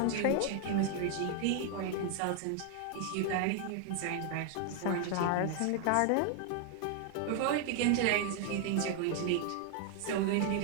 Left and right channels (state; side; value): different; both; correlation 0.00